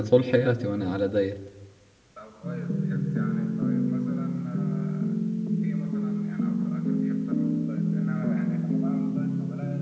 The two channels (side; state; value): both; identical; correlation 1.00